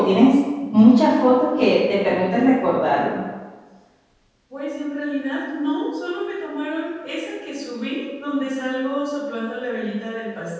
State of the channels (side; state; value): both; identical; correlation 1.00